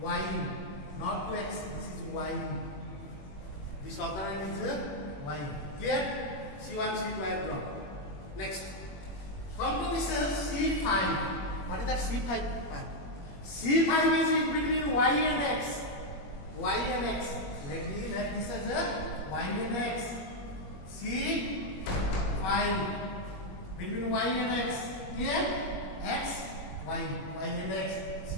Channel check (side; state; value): right; late; 21 ms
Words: Not to X, this is Y. This other one is Y. Clear? C1, C2 I have drawn. Next. Come to this C5. What is that C5? C5 is between Y and X. Y and X. Let me let this as a Y and X. C5 between Y and X. Here X, Y and X.